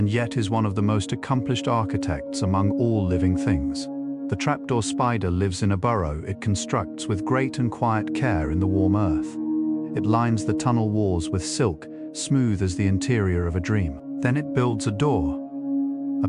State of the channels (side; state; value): both; identical; correlation 1.00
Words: yet is one of the most accomplished architects among all living things. The trapdoor spider lives in a burrow it constructs with great and quiet care in the warm earth. It lines the tunnel walls with silk, smooth as the interior of a dream. Then it builds a door, a